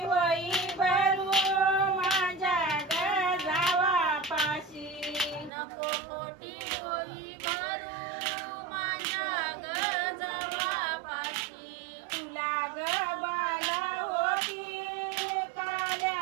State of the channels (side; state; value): left; drops out; at 5.5 s